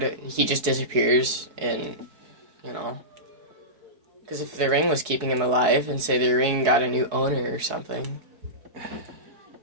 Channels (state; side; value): late; left; 4.7 ms